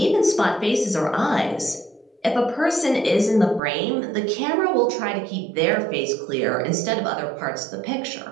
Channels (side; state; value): left; drops out; at 3.6 s